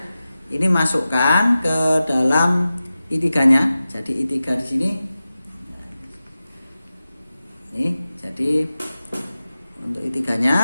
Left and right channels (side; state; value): both; inverted; correlation -0.94